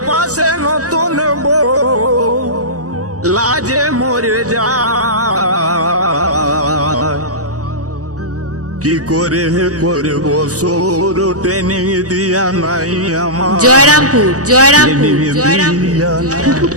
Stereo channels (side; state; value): left; late; 0.66 ms